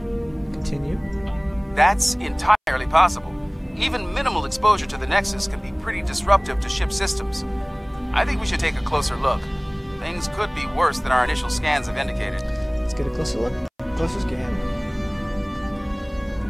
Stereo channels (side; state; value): both; identical; correlation 1.00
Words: Continue. That's entirely possible. Even minimal exposure to the Nexus can be pretty disruptive to ship systems. I think we should take a closer look. Things could be worse than our initial scans have indicated. Let's get a closer look. Closer scan.